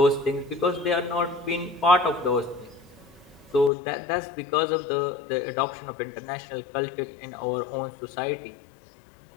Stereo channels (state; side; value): drops out; right; at 3.7 s